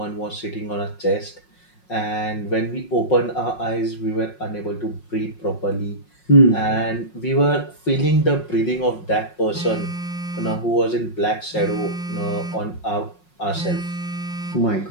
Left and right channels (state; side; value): late; right; 5.5 ms